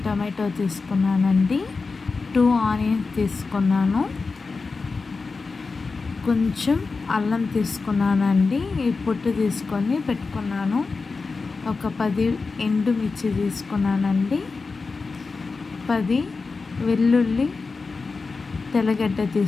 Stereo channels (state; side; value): quieter; right; 4.2 dB